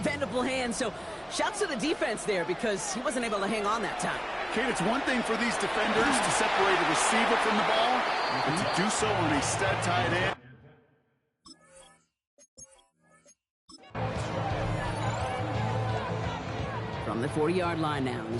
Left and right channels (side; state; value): both; identical; correlation 1.00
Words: hands. So shouts to the defense there because he wasn't able to hang on that time. Kate, it's one thing for these defenders to separate a receiver from the ball, but to do so on a stud tight end. From the 40-yard line now,